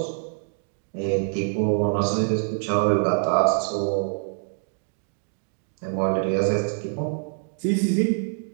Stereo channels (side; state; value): left; silent; 62 dB below the other